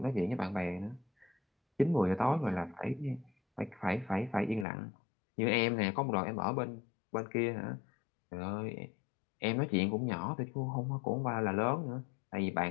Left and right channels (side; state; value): right; drops out; at 4.7 s